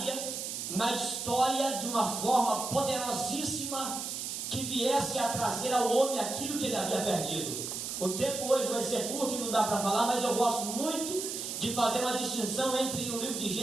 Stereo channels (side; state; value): right; noise; hiss, 5 dB below the sound